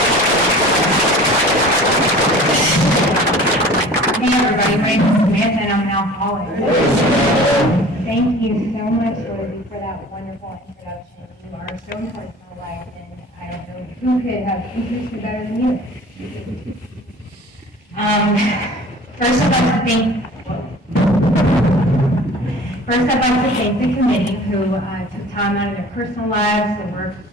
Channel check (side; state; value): both; normal; correlation 0.44